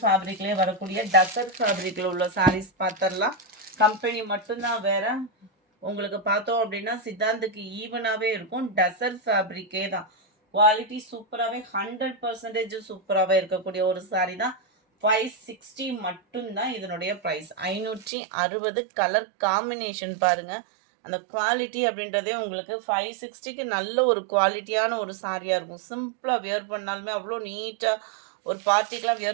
ஃபேப்ரிக்லேயே வரக்கூடிய டசர் ஃபேப்ரிக்கில் உள்ள சாரீஸ் பார்த்துடலாம். கம்பெனி மட்டும்தான் வேறு. உங்களுக்கு பார்த்தோம் அப்படின்னா சித்தாந்துக்கு ஈவனாகவே இருக்கும். டசர் ஃபேப்ரிக்கே தான். குவாலிட்டி சூப்பராகவே 100% சூப்பராகவே இருக்கக்கூடிய ஒரு சாரீ தான். 560 மட்டும்தான் இதனுடைய ப்ரைஸ். 560. கலர் காம்பினேஷன் பாருங்கள். அந்த குவாலிட்டி அப்படின்றதே உங்களுக்கு 560க்கு நல்ல ஒரு குவாலிட்டியான ஒரு சாரியாக இருக்கும். சிம்பிளாக வியர் பண்ணாலுமே அவ்வளோ நீட்டாக, ஒரு பார்ட்டிக்கெலாம்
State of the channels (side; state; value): left; drops out; at 18.1 s